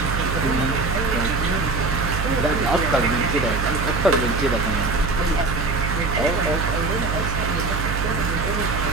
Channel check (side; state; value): right; noise; hum, 2 dB below the sound